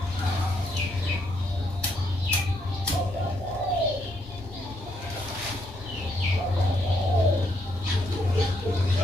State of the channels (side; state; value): both; normal; correlation 0.75